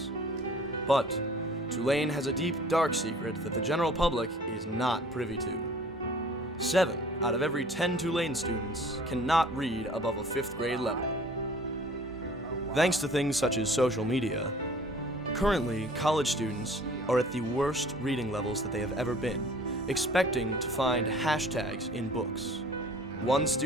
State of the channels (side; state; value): both; normal; correlation 0.50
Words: But Tulane has a deep, dark secret that the general public is not privy to. 7 out of every 10 Tulane students cannot read above a 5th grade level. Thanks to things such as social media, currently college students are at the worst reading levels that they have ever been, expecting to find hashtags in books. One